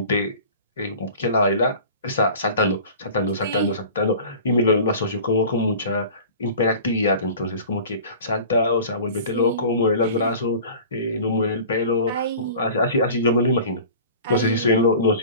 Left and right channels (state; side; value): inverted; both; correlation -0.41